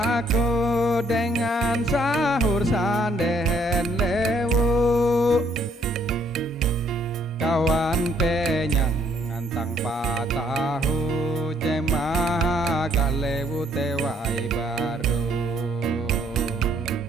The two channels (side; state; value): both; normal; correlation 0.67